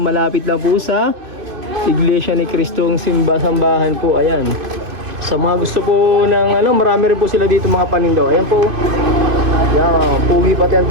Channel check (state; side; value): late; left; 2.5 ms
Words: malapit lang po sa Iglesia ni Cristong Sambahan po. Ayan. Sa mga gusto po ng marami rin po sila dito mga panindaw. Ayan po. Ayan, pugi pati ang